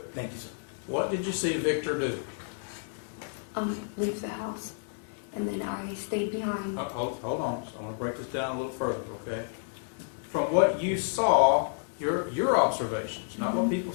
Thank you, sir. What did you see Victor do? Leave the house, and then I stayed behind. Hold on, so I want to break this down a little further, okay? From what you saw, your observations, not what people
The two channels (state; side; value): silent; right; 58 dB below the other